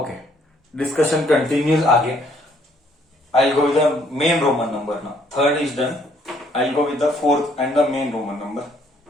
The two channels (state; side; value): normal; both; correlation 0.65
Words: Discussion continues again. I'll go with the main Roman number now. Third is done. I'll go with the fourth and the main Roman number.